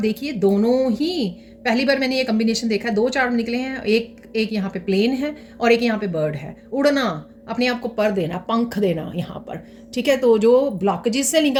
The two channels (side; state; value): both; identical; correlation 1.00